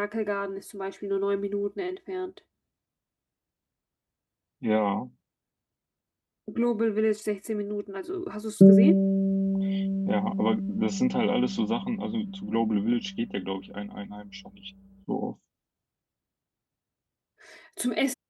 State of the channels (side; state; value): both; identical; correlation 1.00